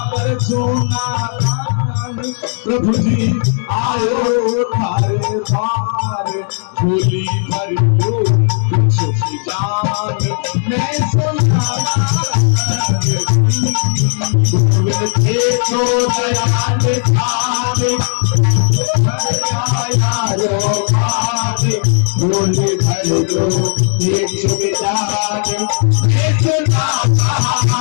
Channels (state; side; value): silent; right; 58 dB below the other